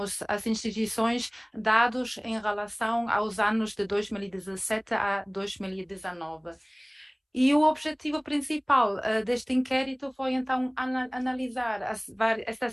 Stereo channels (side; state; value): both; identical; correlation 1.00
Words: às instituições dados em relação aos anos de 2017 a 2019. E o objetivo principal deste inquérito foi então analisar